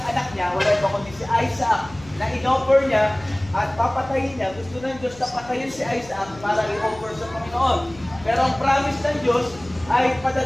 anak niya, wala pa kundi si Isaac, na in-offer niya at papatayin niya. Gusto ng Diyos na patayin si Isaac para i-offer sa Panginoon. Pero ang promise ng Diyos ay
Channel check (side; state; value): left; noise; hum, 20 dB below the sound